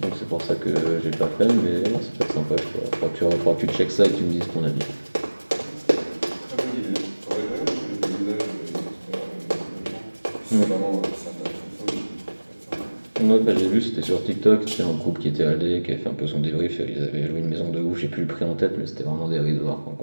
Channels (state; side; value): inverted; both; correlation -1.00